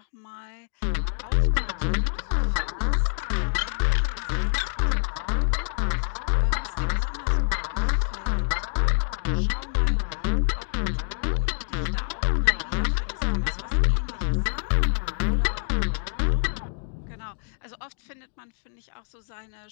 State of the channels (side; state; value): right; silent; digital silence